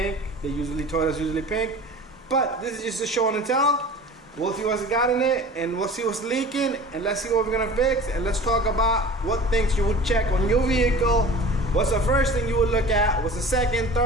Toyota's usually pink. But this is just a show and tell. We'll see what's got in it, and we'll see what's leaking, and let's see what we're gonna fix, and let's talk about what things you would check on your vehicle. What's the first thing you would look at? What's the second,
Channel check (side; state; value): both; normal; correlation 0.39